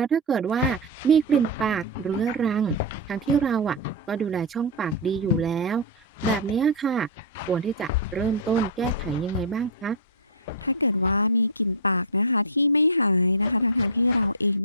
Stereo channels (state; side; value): normal; both; correlation -0.07